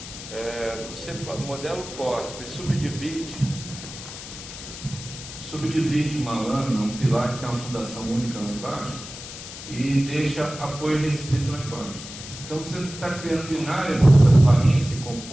Você modela o pórtico e subdivide uma lâmina, um pilar que tem uma fundação única lá embaixo, e deixa apoio restrito lá embaixo. Então você está criando binária nessas barrinhas que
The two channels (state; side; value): noise; left; hiss, 12 dB below the sound